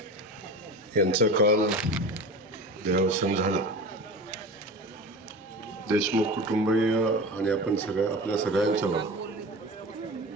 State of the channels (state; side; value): normal; both; correlation 0.32